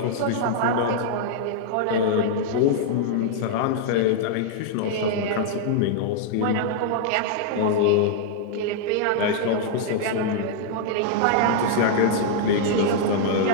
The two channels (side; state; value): both; different; correlation -0.01